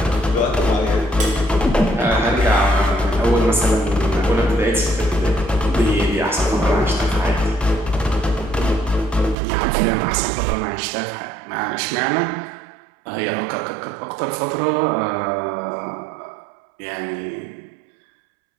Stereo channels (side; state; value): left; drops out; at 9.3 s